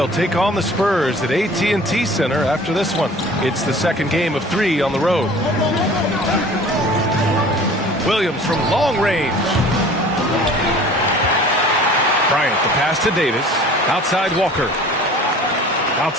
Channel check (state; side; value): normal; both; correlation 0.46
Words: take on the Spurs at AT&T Center after this one. It's the second game of 3 on the road. Williams from long range. Bryant, the pass to Davis. Outside Walker.